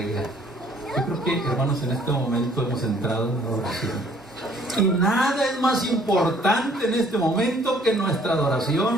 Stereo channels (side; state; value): both; normal; correlation 0.60